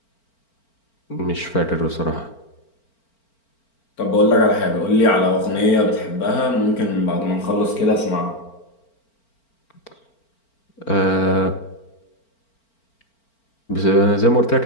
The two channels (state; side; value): late; right; 4.4 ms